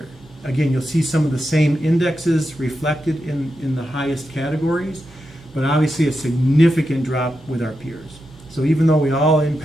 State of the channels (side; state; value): both; normal; correlation 0.88